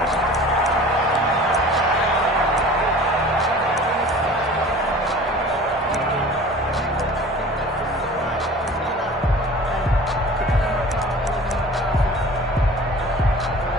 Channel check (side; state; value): both; normal; correlation 0.43